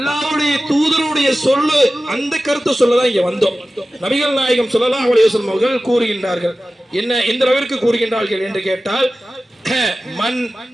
தூதருடைய சொல்லு, அந்த கருத்தை சொல்லதான் இங்க வந்தோம். நபிகள் நாயகம் ஸல்லல்லாஹு அலைஹி வஸல்லம் அவர்கள் கூறுகின்றார்கள். என்ன, எந்த அளவிற்கு கூறுகின்றார்கள் என்று கேட்டால், மன்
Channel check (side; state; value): both; normal; correlation 0.95